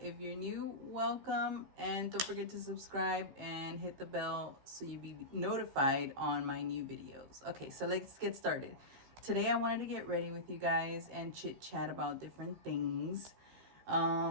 you're new, welcome, and don't forget to subscribe and hit the bell so you be notified on my new videos. Okay, so let's get started. Today I wanted to get ready with you guys and chit chat about different things.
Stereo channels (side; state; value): left; late; 15 ms